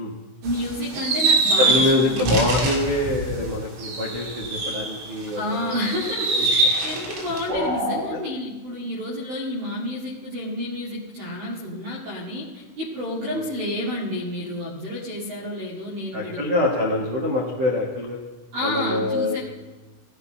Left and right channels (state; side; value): late; left; 16 ms